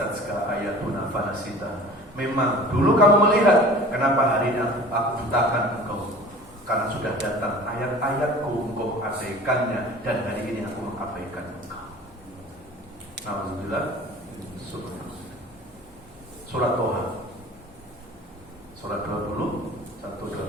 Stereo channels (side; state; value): both; normal; correlation 0.43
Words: ayatuna fanasita. Memang dulu kamu melihat, kenapa hari ini aku butakan engkau? Karena sudah datang ayat-ayatku, engkau mengabaikannya, dan hari ini aku mengabaikan engkau. Alhamdulillah. Surat Toha, surat 20,